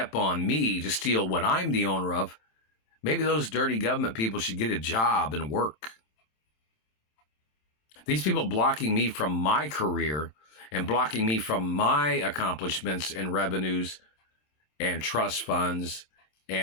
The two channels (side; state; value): right; late; 27 ms